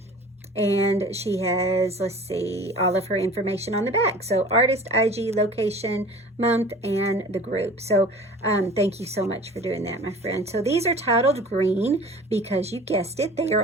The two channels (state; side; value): normal; both; correlation 0.43